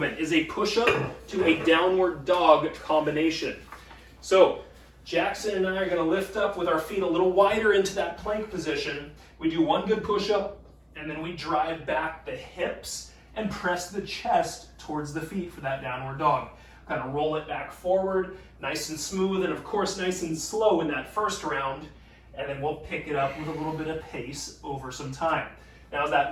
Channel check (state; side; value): identical; both; correlation 1.00